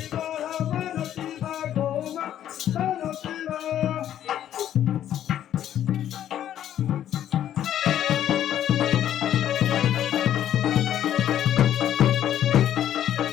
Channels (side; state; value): right; quieter; 11.1 dB